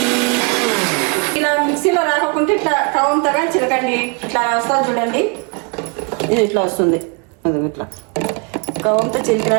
ఇలా మిక్సీలో రాకుంటే ఇట్లా కవంతో కానీ చిలకండి. ఇట్లా వస్తుంది చూడండి, ఇది ఇట్లా వస్తుంది. అది ఇట్లా కవంతో చిలికినా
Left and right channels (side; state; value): left; quieter; 33.7 dB